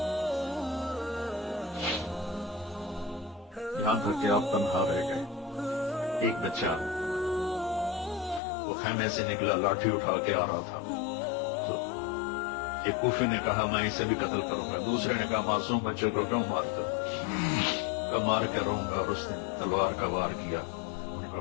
यहां तक कि आप तन्हा रह गए। एक बच्चा वो खेमे से निकला, लाठी उठा के आ रहा था। तो एक कूफी ने कहा मैं इसे भी कत्ल करूंगा। दूसरे ने कहा मासूम बच्चों को क्यों मारते? मार के रहूंगा। और उसने तलवार का वार किया, उनका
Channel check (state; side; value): drops out; right; at 8.4 s